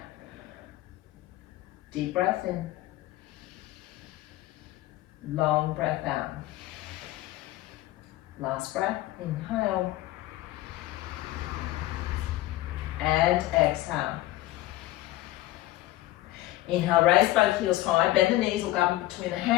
Deep breath in. Long breath out. Last breath. Inhale. And exhale. Inhale, raise both heels high. Bend the knees, look up in between the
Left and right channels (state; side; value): quieter; right; 16.7 dB